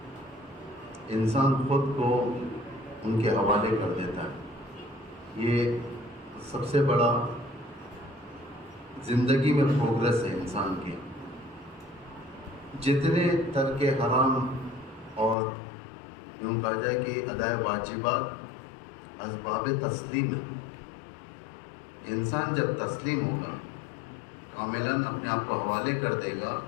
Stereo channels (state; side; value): drops out; right; at 15.4 s